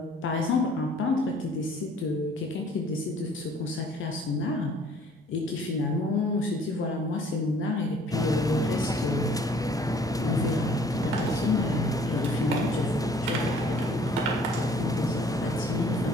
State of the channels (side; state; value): both; normal; correlation 0.56